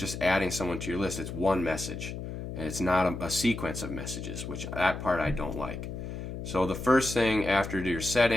adding someone to your list. It's one message, and it's not a sequence of messages, which that part I don't like. So the first thing after your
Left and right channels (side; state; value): left; noise; hum, 7 dB below the sound